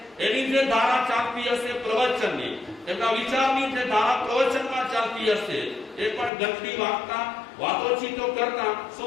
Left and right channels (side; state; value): right; drops out; at 6.3 s